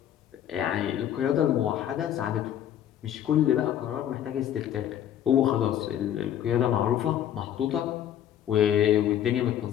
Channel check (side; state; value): right; quieter; 10.7 dB